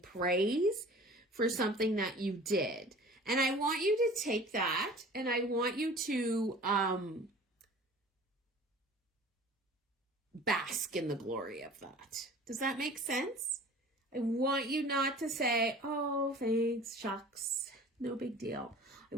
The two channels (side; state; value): both; normal; correlation 0.44